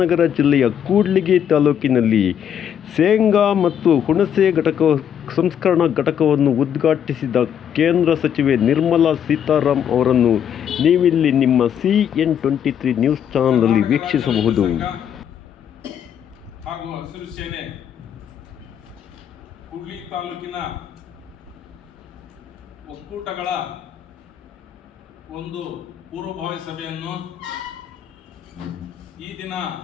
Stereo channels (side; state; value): right; quieter; 9.0 dB